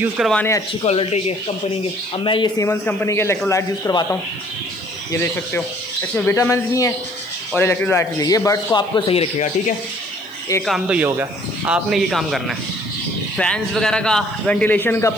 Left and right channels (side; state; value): right; noise; hiss, 26 dB below the sound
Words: करवाने हैं अच्छी क्वालिटी के, कंपनी के। अब मैं ये सीमेंस कंपनी के इलेक्ट्रोलाइट यूज़ करवाता हूँ, ये देख सकते हो। इसमें विटामिन भी हैं और इलेक्ट्रोलाइट भी है। ये बर्ड्स को आपको सही रखेगा, ठीक है। एक काम तो ये हो गया, आपने ये काम करना है, फैंस वगैरह का, वेंटिलेशन का